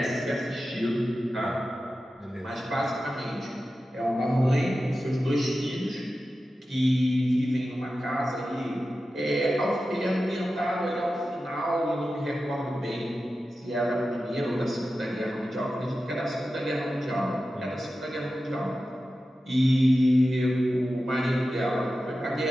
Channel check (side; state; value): both; normal; correlation 0.93